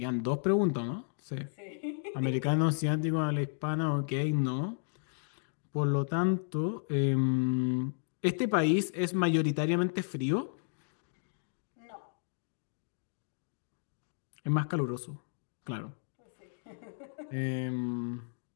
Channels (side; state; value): right; silent; digital silence